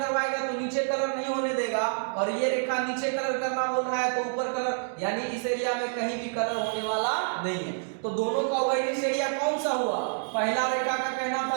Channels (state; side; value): silent; left; digital silence